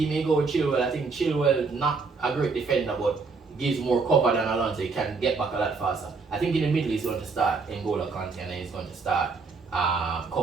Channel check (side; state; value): left; quieter; 4.4 dB